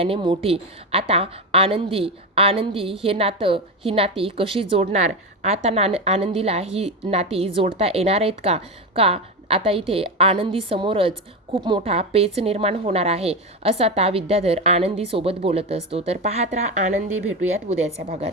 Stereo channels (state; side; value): normal; both; correlation 0.16